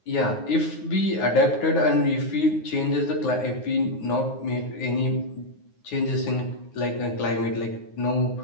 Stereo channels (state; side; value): late; right; 9.5 ms